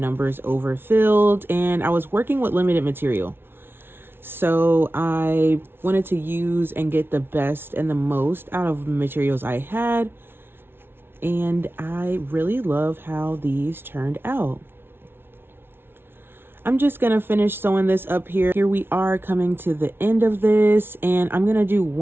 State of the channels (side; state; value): left; late; 0.11 ms